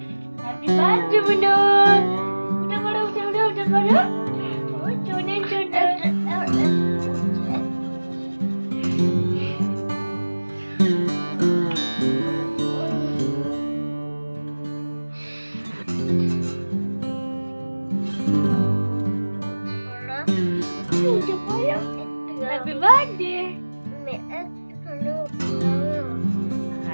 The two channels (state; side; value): inverted; both; correlation -1.00